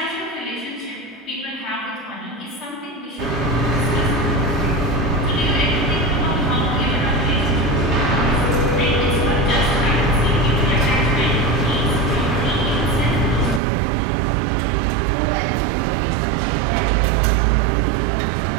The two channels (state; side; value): drops out; left; at 13.6 s